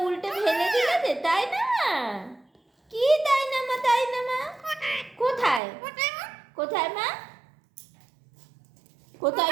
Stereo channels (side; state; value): left; drops out; at 5.6 s